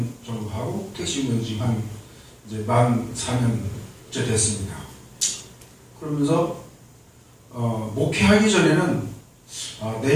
정도 하고 택시운전 지금 한 이제 만 4년째 됐습니다. 그러면서 목회하기 전에는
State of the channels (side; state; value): both; identical; correlation 1.00